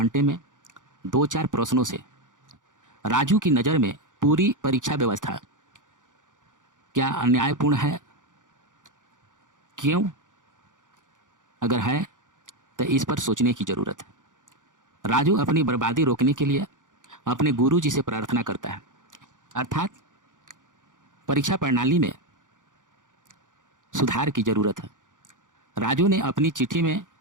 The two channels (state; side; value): late; left; 0.87 ms